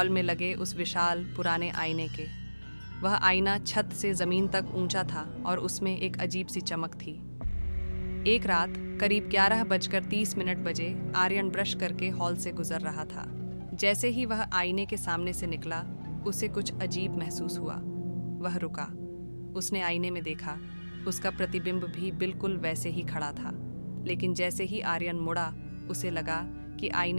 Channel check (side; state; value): both; inverted; correlation -1.00